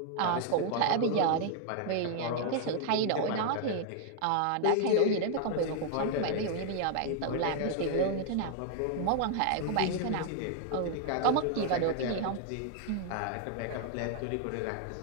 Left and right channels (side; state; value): both; different; correlation 0.00